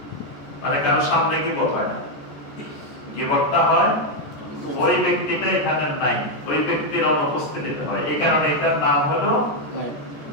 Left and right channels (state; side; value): late; right; 14 ms